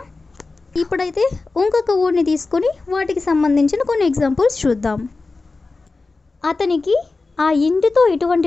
ఇప్పుడైతే ఇంకొక వర్డ్ని తీసుకొని వాటికి సంబంధించిన కొన్ని ఎగ్జాంపుల్స్ చూద్దాం. అతనికి ఆ ఇంటితో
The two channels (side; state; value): right; quieter; 3.7 dB